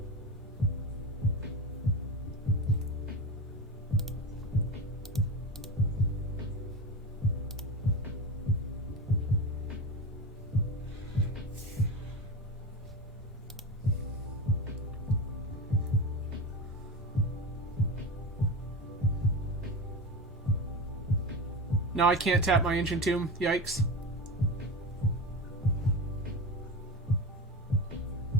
Now I can't tap my Ancient Tomb. Yikes.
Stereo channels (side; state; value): both; normal; correlation 0.22